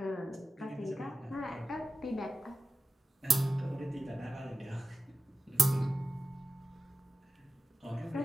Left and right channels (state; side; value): normal; both; correlation 0.93